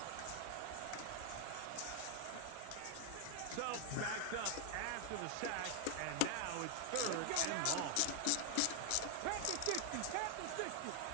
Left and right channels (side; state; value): both; different; correlation 0.00